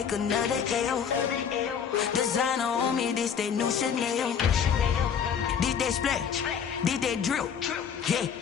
another L. Designer on me, this that new Chanel. This that splash, this that drill. Yeah,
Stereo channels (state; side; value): quieter; right; 7.4 dB